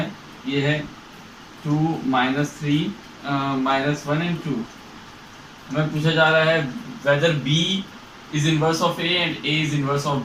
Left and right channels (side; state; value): both; identical; correlation 1.00